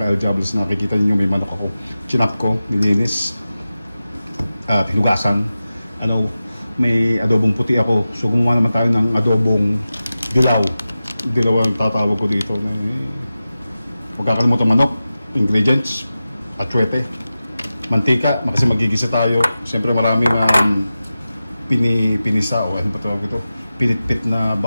Kael Jabals. Nakikita niyo may manok ako, chinap ko, nilinis at hinugasan. May adobong puti ako. So gumawa naman tayo ng adobong dilaw. Dilaw ang tatawag ko dito. Huwag kakalimutan manok, ingredients, atsuete, mantika, kasi magigisa tayo. Siyempre maraming pinisa o ano pa tawag ito, pinitpit na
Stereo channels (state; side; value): inverted; both; correlation -0.94